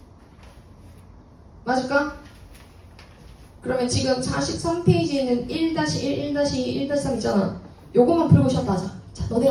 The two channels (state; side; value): identical; both; correlation 1.00